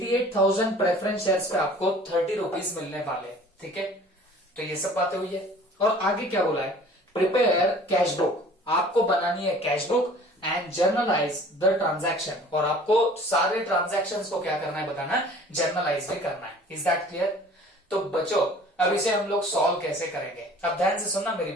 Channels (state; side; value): normal; both; correlation 0.48